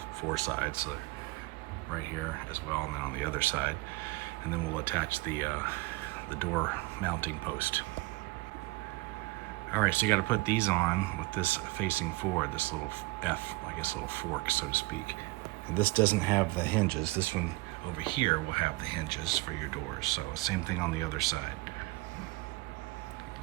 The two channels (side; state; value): left; quieter; 22.7 dB